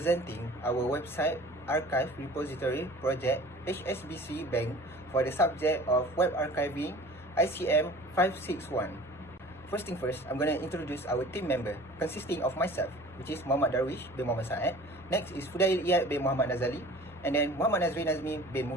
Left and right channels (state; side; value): normal; both; correlation 0.44